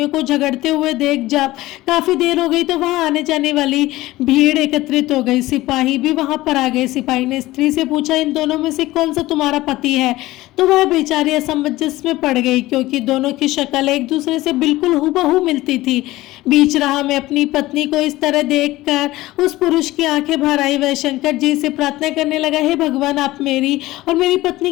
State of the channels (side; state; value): right; quieter; 17.7 dB